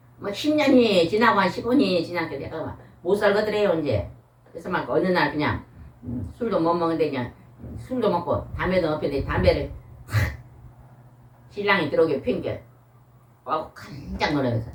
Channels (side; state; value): both; identical; correlation 1.00